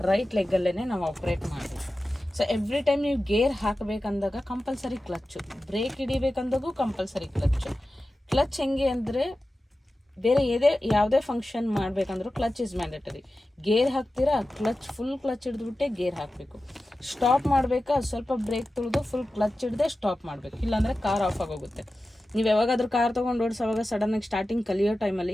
ರೈಟ್ ಲೆಗ್ಗಲ್ಲೇ ನಾವು ಆಪ್ರೇಟ್ ಮಾಡಬೇಕು. ಸೊ ಎವ್ರಿ ಟೈಮ್ ನೀವು ಗೇರ್ ಹಾಕಬೇಕಂದಾಗ ಕಂಪಲ್ಸರಿ ಕ್ಲಚ್ಚು, ಬ್ರೇಕ್ ಹಿಡಿಬೇಕಂದಾಗೂ ಕಂಪಲ್ಸರಿ ಕ್ಲಚ್ಚು. ಕ್ಲಚ್ ಹೆಂಗೆ ಅಂದರೆ, ಬೇರೆ ಯಾವುದೇ ಫಂಕ್ಷನ್ ಮಾಡಬೇಕಂದ್ರೂ ಕ್ಲಚ್ ಇಸ್ ಮ್ಯಾಂಡೇಟರಿ. ಗೇರ್ ಹಾಕ್ತೀರಾ, ಫುಲ್ ಕ್ಲಚ್ ಹಿಡಿದ್ಬಿಟ್ಟೆ ಗೇರ್ ಹಾಕಬೇಕು. ಸ್ಟಾಪ್ ಮಾಡಬೇಕಾ, ಸ್ವಲ್ಪ ಬ್ರೇಕ್ ತುಳಿದು ಫುಲ್ ಕ್ಲಚ್ ಹಿಡ್ದೆ ಸ್ಟಾಪ್ ಮಾಡಬೇಕು. ಇಲ್ಲಾಂದರೆ ಕಾರ್ ಆಫ್ ಆಗೋಗುತ್ತೆ. ನೀವು ಯಾವಾಗಾದ್ರೂ ಕಾರ್ ತೊಗೊಂಡು ಓಡಿಸೋವಾಗ ಸಡನ್ನಾಗಿ ಸ್ಟಾರ್ಟಿಂಗ್ ಕಲಿಯೋ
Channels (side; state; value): both; normal; correlation 0.94